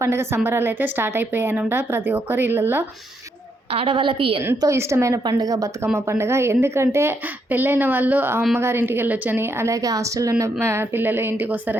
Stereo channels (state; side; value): normal; both; correlation 0.77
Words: పండుగ సంబరాలు అయితే స్టార్ట్ అయిపోయాయనమాట ప్రతి ఒక్కరి ఇళ్ళల్లో. ఆడవాళ్ళకి ఎంతో ఇష్టమైన పండుగ బతుకమ్మ పండుగ. ఎందుకంటే పెళ్ళైన వాళ్ళు అమ్మగారి ఇంటికి వెళ్ళొచ్చని, అలాగే హాస్టల్లో ఉన్న పిల్లలు ఇంటికి